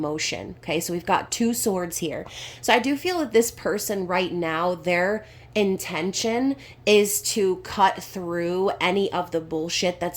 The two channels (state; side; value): identical; both; correlation 1.00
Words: Okay, so we've got two swords here. So I do feel that this person right now, their intention is to cut through any of the bullshit